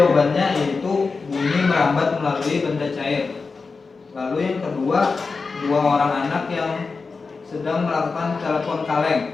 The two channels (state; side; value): quieter; right; 4.4 dB